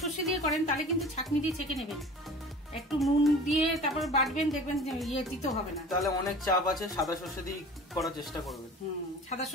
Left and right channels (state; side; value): normal; both; correlation 0.42